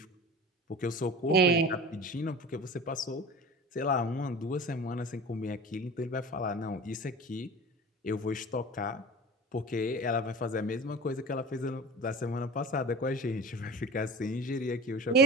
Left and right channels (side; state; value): both; normal; correlation 0.36